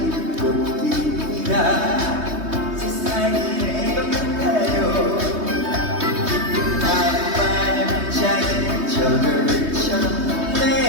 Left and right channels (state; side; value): late; left; 3.2 ms